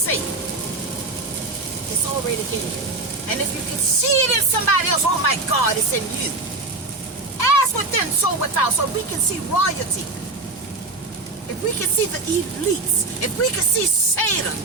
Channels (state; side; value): quieter; left; 3.2 dB